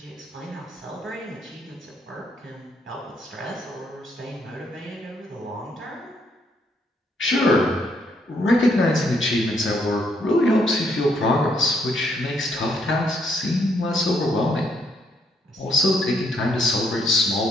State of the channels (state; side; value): normal; both; correlation 0.71